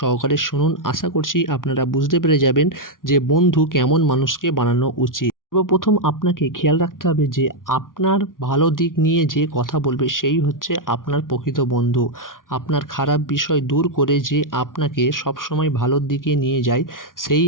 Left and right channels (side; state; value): right; late; 0.89 ms